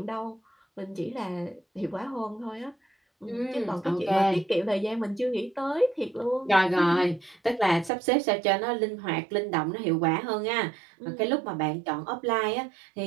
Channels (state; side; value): drops out; left; at 7.9 s